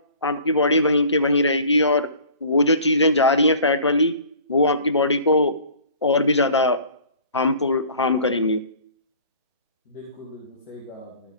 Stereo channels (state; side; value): inverted; both; correlation -0.48